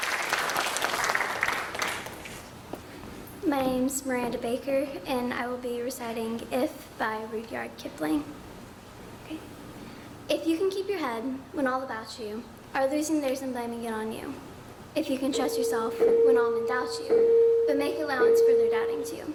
My name's Miranda Baker, and I will be reciting If by Rudyard Kipling. Okay. If you can keep your head when all about you are losing theirs and blaming it on you. If you can trust yourself when all men doubt you, but make allowance for their doubting too.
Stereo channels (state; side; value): identical; both; correlation 1.00